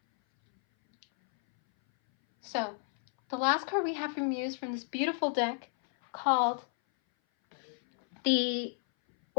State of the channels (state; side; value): silent; right; 57 dB below the other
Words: So, the last card we have from you is from this beautiful deck called the